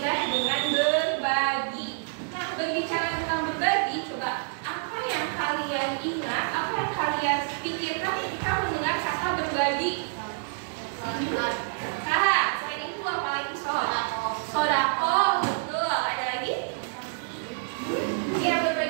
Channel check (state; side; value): silent; left; digital silence